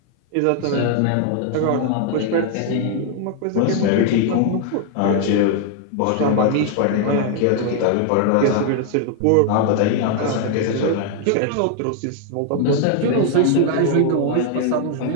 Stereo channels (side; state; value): both; different; correlation 0.00